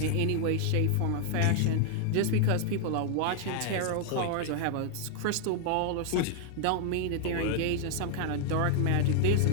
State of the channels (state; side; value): different; both; correlation 0.00